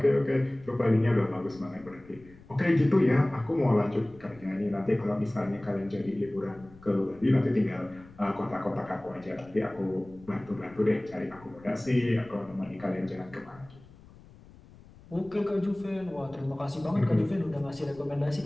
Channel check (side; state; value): left; noise; rumble, 23 dB below the sound